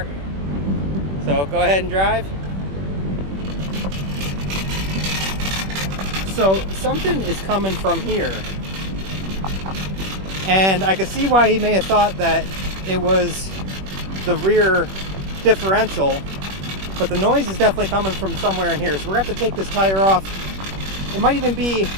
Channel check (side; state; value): left; late; 21 ms